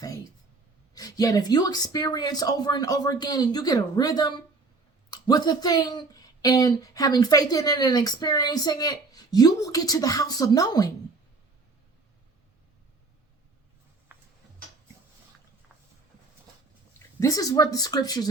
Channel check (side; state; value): left; quieter; 3.7 dB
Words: faith. Yet if you experience over and over again and you get a rhythm with a thing and having faith in it and experiencing it, you will get to the house of knowing. This is what the scriptures